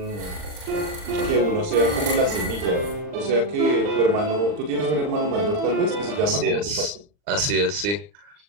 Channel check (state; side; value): late; left; 39 ms